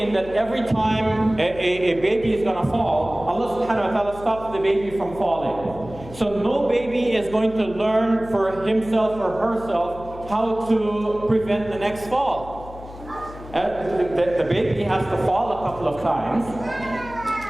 that every time a baby is going to fall, Allah subhanahu wa ta'ala stops the baby from falling. So no baby is going to learn for himself or herself how to prevent the next fall. The baby has to fall a couple of times.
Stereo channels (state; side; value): noise; left; hum, 16 dB below the sound